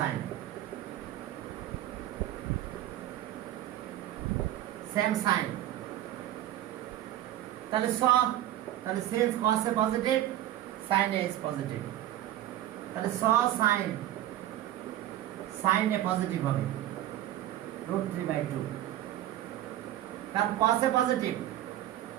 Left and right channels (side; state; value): left; quieter; 13.0 dB